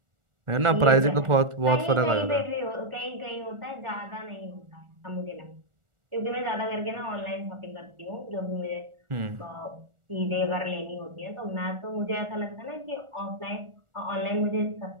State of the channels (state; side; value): late; left; 1.4 ms